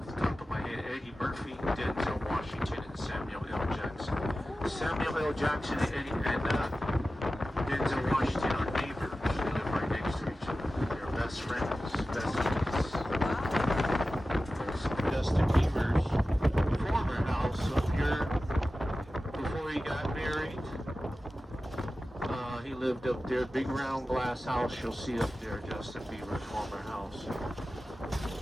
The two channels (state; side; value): normal; both; correlation 0.94